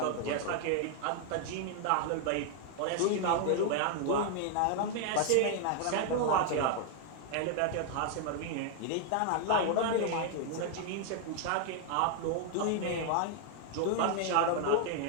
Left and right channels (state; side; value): different; both; correlation 0.00